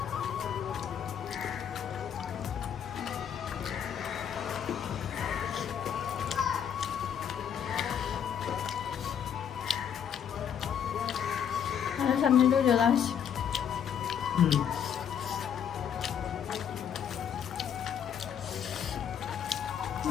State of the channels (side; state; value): right; quieter; 8.5 dB